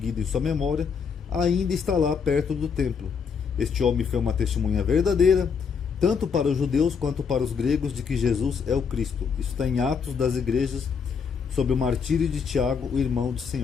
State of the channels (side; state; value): right; quieter; 6.1 dB